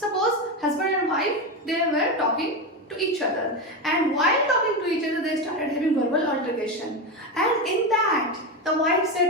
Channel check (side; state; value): both; normal; correlation 0.15